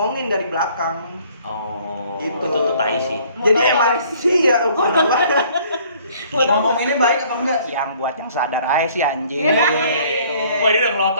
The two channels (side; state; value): both; inverted; correlation -0.57